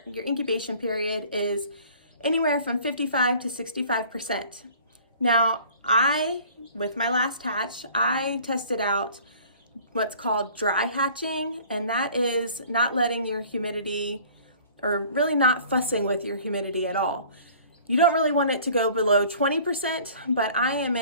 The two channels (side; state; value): both; inverted; correlation -0.50